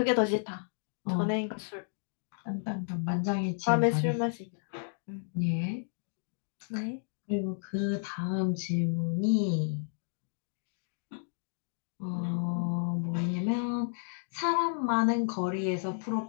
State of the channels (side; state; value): right; silent; digital silence